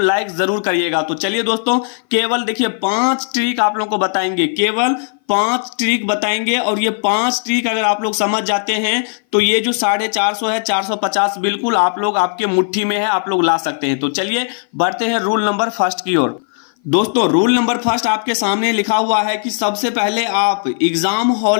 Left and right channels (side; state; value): right; silent; 58 dB below the other